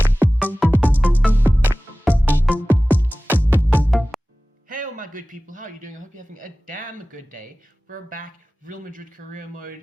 good people, how are you doing? I hope you're having a damn good day. We're back, Real Madrid career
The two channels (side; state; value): both; normal; correlation 0.97